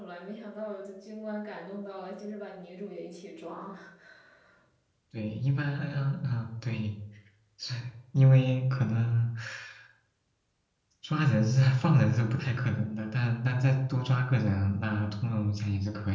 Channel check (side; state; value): both; identical; correlation 1.00